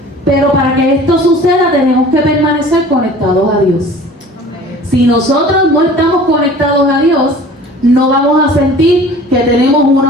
Pero para que esto suceda tenemos que permanecer conectados a Dios. Si nosotros no estamos conectados a Dios, no vamos a sentir que tenemos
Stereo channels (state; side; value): normal; both; correlation 0.45